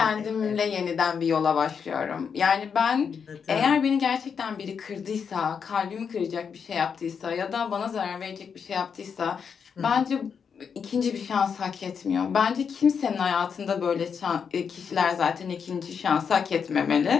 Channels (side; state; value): right; quieter; 6.6 dB